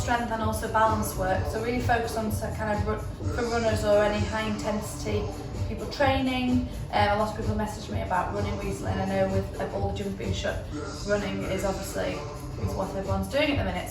and also balance work. So really focus on kind of for runners or any high intensity people training. A lot of people messaged me about running recently, and I know with all the gyms being shut, running is obviously what everyone's doing at the minute.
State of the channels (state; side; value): identical; both; correlation 1.00